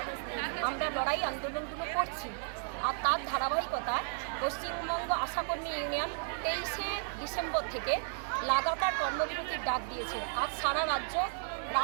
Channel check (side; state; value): left; silent; 55 dB below the other